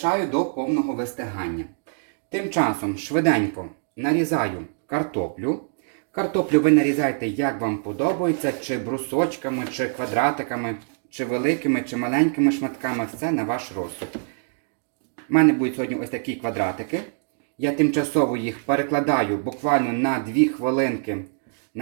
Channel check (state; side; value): silent; left; digital silence